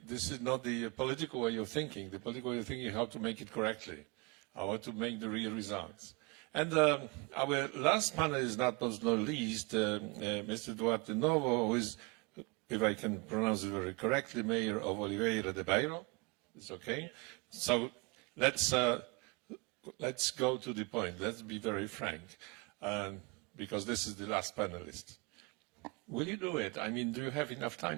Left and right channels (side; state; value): left; quieter; 28.1 dB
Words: not the political way of thinking. The political way of thinking is how to make it correctly, how to make the real results. And our last panelist, not least, Mr. Duarte Novo, who is, if I can pronounce it very correctly, Mayor of Oliveira de Beiro. It's okay. So let's go to the point. Let's be very frank, because this is the last panelist. Will you do it? I mean, do you have enough